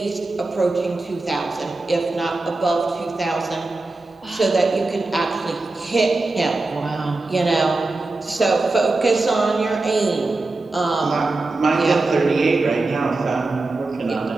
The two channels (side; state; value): left; quieter; 3.3 dB